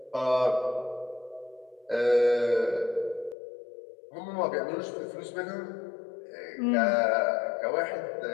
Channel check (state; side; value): drops out; right; at 3.4 s